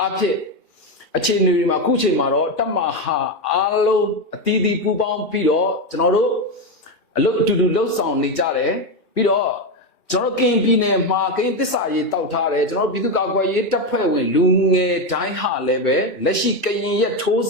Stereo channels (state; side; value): normal; both; correlation 0.11